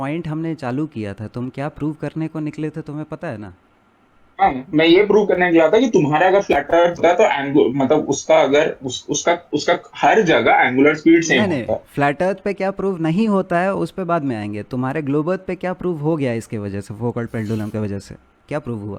हमने चालू किया था, तुम क्या प्रूव करने को निकले थे, तुम्हें पता है ना? हाँ, मैं ये प्रूव करने गया था कि तुम्हारा अगर फ्लैट अर्थ है तो मतलब उसका अगर उसका हर जगह एंगुलर स्पीड सेम नहीं होता है। फ्लैट अर्थ पे क्या प्रूव नहीं होता है उस पे बाद में आएंगे। तुम्हारे ग्लोब अर्थ पे क्या प्रूव हो गया इसके वजह से, फोकॉल्ट पेंडुलम की वजह से क्या प्रूव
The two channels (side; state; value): both; identical; correlation 1.00